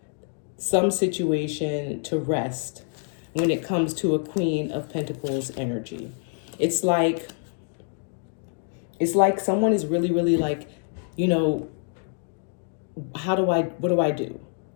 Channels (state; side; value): silent; right; 61 dB below the other